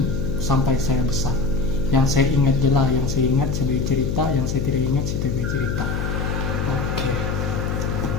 sampai saya besar. Yang saya ingat jelas, yang saya ingat sebagai cerita, yang saya tidak ingat sebagai cerita. Oke.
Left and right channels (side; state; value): left; noise; hum, 2 dB below the sound